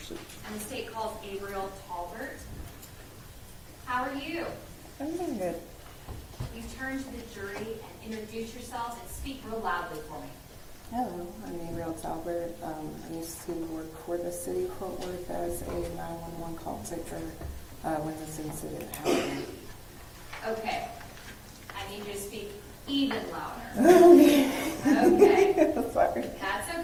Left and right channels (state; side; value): identical; both; correlation 1.00